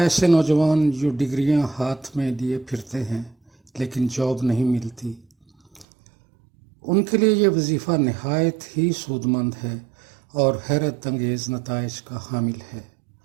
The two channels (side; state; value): left; drops out; at 5.9 s